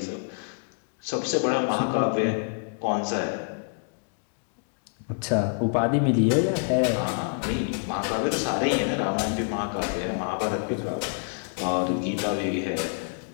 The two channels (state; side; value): silent; right; 57 dB below the other